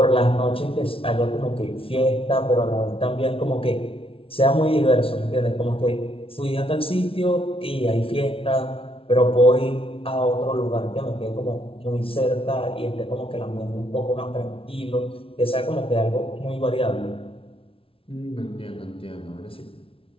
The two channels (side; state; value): right; late; 0.26 ms